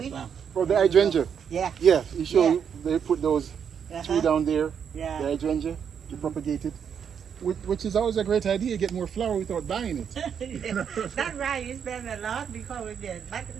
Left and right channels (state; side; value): quieter; left; 7.6 dB